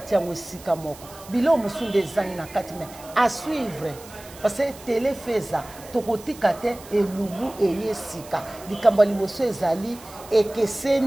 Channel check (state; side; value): noise; right; hiss, 19 dB below the sound